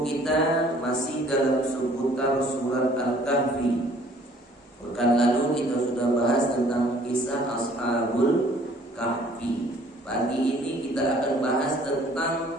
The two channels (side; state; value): both; normal; correlation 0.56